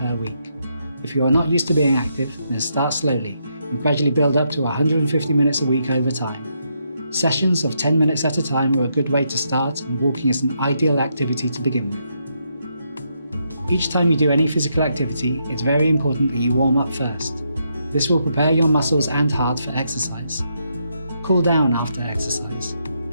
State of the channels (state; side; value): inverted; both; correlation -0.79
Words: week. If you are not used to being active, then start slowly and gradually build up to 150 minutes a week over time. Sessions of 10 minutes at a time are a good way to start, and walking is an ideal activity to begin with. Each time you do any physical activity, it's very important that you warm up first. This will prepare your muscles and heart for exercise. Cool down after exercise.